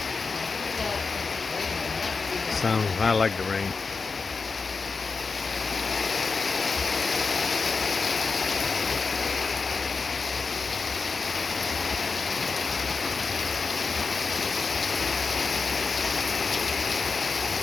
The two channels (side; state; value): right; quieter; 4.6 dB